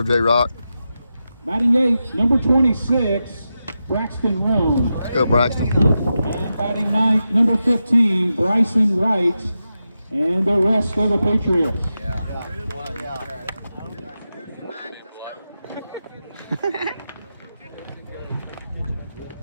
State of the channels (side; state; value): both; inverted; correlation -0.90